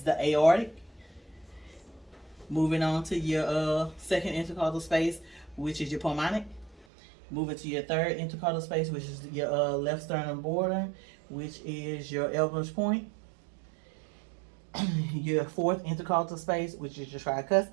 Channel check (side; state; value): left; drops out; at 6.9 s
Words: the aortic. Moving on to your second intercostal space, which is your pulmonic. Moving to your third intercostal space, which is your left sternum border, which is your Elbow's point. Your fourth intercostal space, which is your